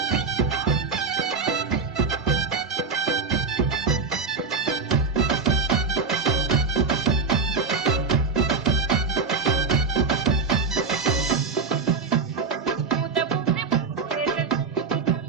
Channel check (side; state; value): left; quieter; 4.8 dB